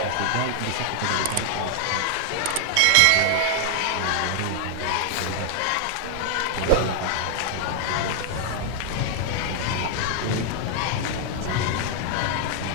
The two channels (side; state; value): both; different; correlation 0.00